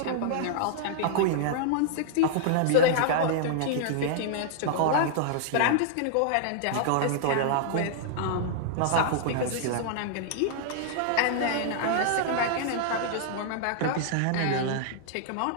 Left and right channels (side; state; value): both; different; correlation -0.01